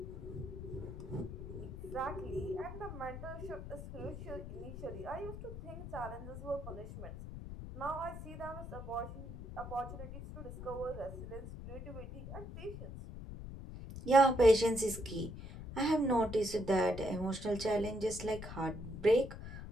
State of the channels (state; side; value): noise; left; rumble, 9 dB below the sound